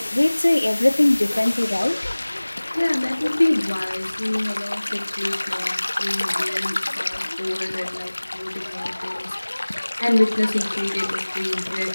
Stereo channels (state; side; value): inverted; both; correlation -1.00